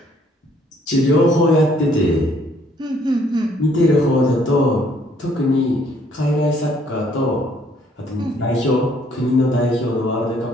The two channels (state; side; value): normal; both; correlation 0.64